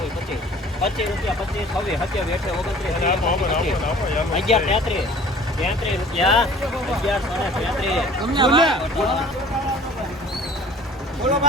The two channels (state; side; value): normal; both; correlation 0.49